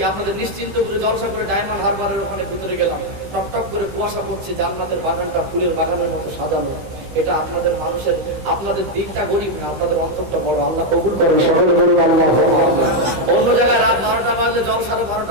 আপনাদের নিশ্চিন্ত করে জলসা করে ডায়মন্ড হারবারের ওখানে ভিতরে গেলাম, টপ টপ করে কুয়াশা পড়ছে, জান্নাতের বাগানটা ফুলের বাগানের মতো সাজানো। এটা আপনাদের মানুষের, আপনাদের দিকটা গরিব না, আপনাদের অন্তরটা বড়। আল্লাহ কবুল করেন, সকলে বলুন আল্লাহুম্মা আমিন। অন্য জায়গায় রাত 12টা বাজলে জলসারও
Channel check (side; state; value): left; late; 15 ms